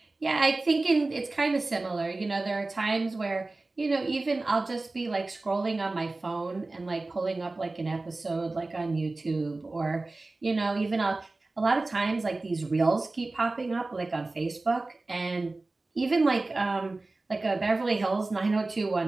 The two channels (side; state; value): left; quieter; 3.2 dB